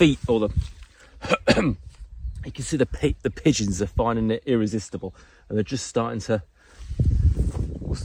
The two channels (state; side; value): identical; both; correlation 1.00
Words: or the you can see the pigeons are finding it irresistible, and they're just starting to, what's